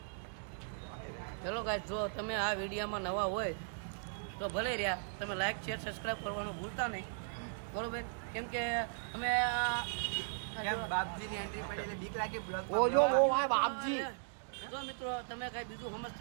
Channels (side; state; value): left; silent; digital silence